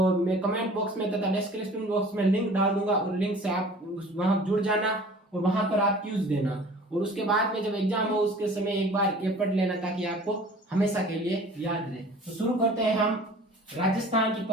मैं कमेंट बॉक्स में तथा डिस्क्रिप्शन बॉक्स में लिंक डाल दूंगा, और लिंक से आप वहां जुड़ जाना और वहां पर आप क्यूज देना। और उसके बाद में जब एग्जाम हो उसके समय एक बार ये पढ़ लेना, ताकि आपको हमेशा के लिए याद रहे। तो शुरू करते हैं हम राजस्थान की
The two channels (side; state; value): both; normal; correlation 0.46